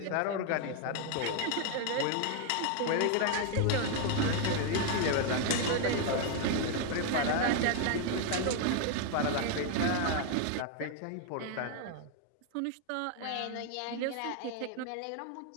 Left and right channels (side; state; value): both; different; correlation 0.01